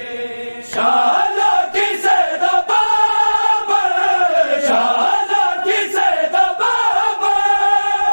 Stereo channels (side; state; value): both; inverted; correlation -1.00